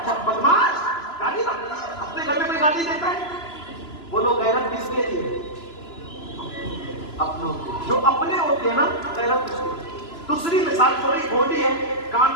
بدماش، گالی اپنے گھر میں کوئی گالی دیتا ہے؟ بولو غیرت کس کے لیے؟ اپنوں کے. جو اپنے ہوتے ہیں نا غیرت اس کے. دوسری مثال تھوڑی کھوٹی ہے، کان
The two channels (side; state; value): right; late; 3.0 ms